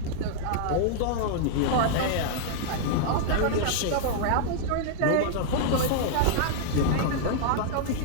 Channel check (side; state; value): both; different; correlation -0.01